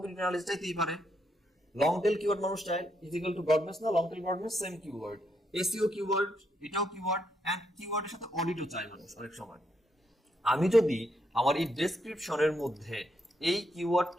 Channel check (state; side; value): normal; both; correlation 0.78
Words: অ্যানালাইসিস চাইতেই পারে। লং টেল কিওয়ার্ড মানুষ চায়, ইজ ইকুয়াল টু ব্রডনেস না, long tail broadness same keyword, SEO keyword এটাও কিওয়ার্ড, এন্ড কিওয়ার্ডের সাথে অডিটও চায় মানুষ অনেক সময়। আমি যদি আমার এই ডেসক্রিপশনের মধ্যে এই